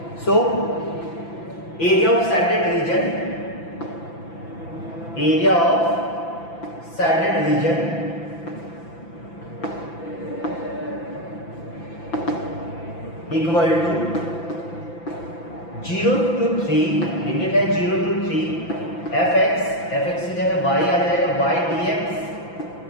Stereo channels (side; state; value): right; late; 5.9 ms